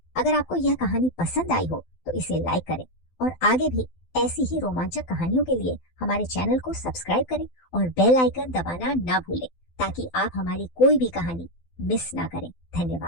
अगर आपको यह कहानी पसंद आई हो तो इसे लाइक करें और आगे भी ऐसी ही रोमांचक कहानियों के लिए हमारे चैनल को सब्सक्राइब करें और बेल आइकन दबाना ना भूलें, ताकि आप हमारी कोई भी कहानी मिस ना करें।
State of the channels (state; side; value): late; right; 12 ms